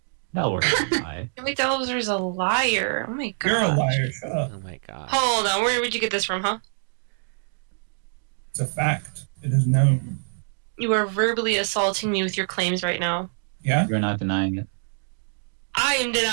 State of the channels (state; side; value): silent; left; digital silence